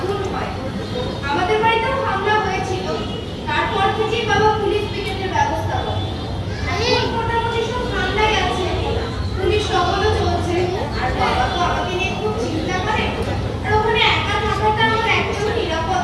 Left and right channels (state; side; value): identical; both; correlation 1.00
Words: আমাদের বাড়িতেও হামলা হয়েছিল তারপর থেকেই বাবা পুলিশ পিকেটের ব্যবস্থা করে এখন মোটামুটি সব ঠান্ডাই আছে পুলিশ টহলও চলছে আর বাবা তো আমাকে নিয়ে খুব চিন্তা করে আর ওখানে একা থাকাটা আমার একদম নিরাপদ